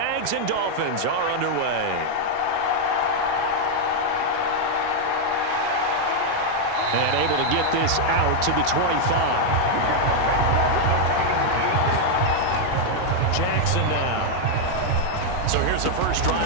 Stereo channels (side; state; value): both; different; correlation 0.00